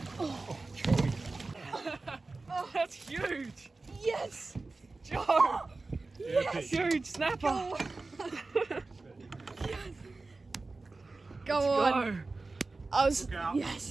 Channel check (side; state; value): left; quieter; 3.5 dB